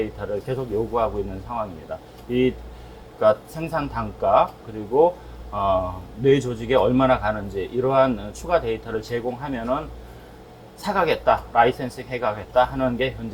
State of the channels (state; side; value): identical; both; correlation 1.00